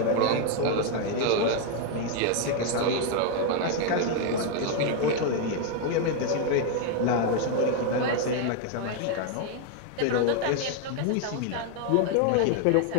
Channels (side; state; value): both; different; correlation 0.01